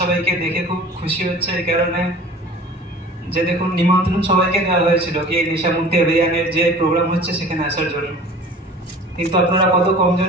দেখে খুব খুশি হচ্ছে এই কারণে যে দেখুন নিমন্ত্রণ সবাইকে দেওয়া হয়েছিল কি এই নেশামুক্তি অভিযানের যে প্রোগ্রাম হচ্ছে সেখানে আসার জন্য, কিন্তু আপনারা কত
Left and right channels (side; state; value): both; normal; correlation 0.43